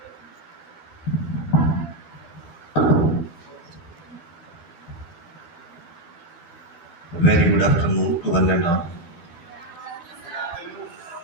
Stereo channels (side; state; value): right; late; 12 ms